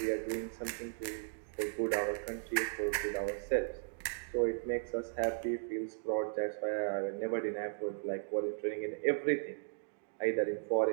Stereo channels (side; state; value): left; silent; digital silence